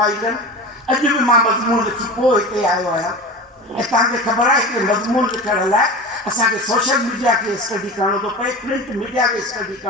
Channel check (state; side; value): normal; both; correlation 0.30